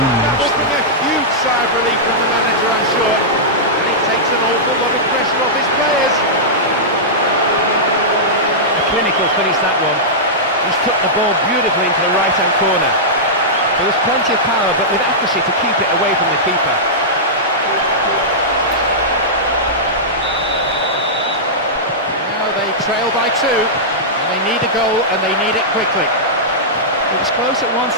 That will bring a huge sigh of relief from the manager, I'm sure. And it takes an awful lot of pressure off his players. A clinical finish, that one. He's took the ball beautifully into the right-hand corner. There was plenty of power, but with accuracy to keep it away from the keeper. Now they trail by 2, and they need a goal, and they need it quickly. It was close at one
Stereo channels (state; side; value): normal; both; correlation -0.12